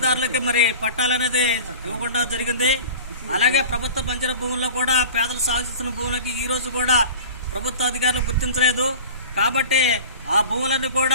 మరి పట్టాలనేది ఇవ్వకుండా జరిగింది. అలాగే ప్రభుత్వ బంజరు భూముల్లో కూడా పేదలు సాగు చేస్తున్న భూములకి ఈ రోజు కూడా ప్రభుత్వ అధికారులు గుర్తించలేదు. కాబట్టి ఆ భూములన్నీ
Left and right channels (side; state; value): both; inverted; correlation -0.38